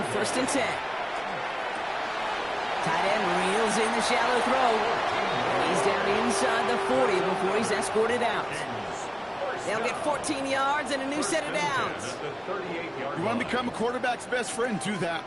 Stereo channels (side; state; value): both; identical; correlation 1.00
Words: 1st and 10. Tight end reels in the shallow throw. He's down inside the 40 before he's escorted out. They'll get 14 yards and a new set of downs. You want to become a quarterback's best friend? Do that.